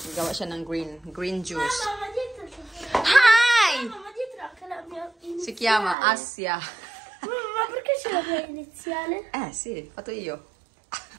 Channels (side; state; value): left; drops out; at 6.0 s